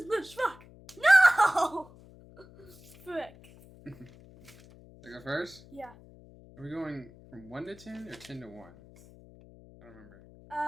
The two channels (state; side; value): noise; left; hum, 22 dB below the sound